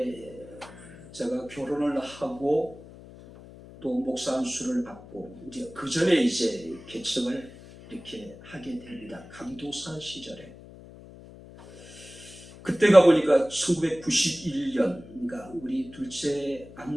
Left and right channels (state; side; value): noise; left; hum, 18 dB below the sound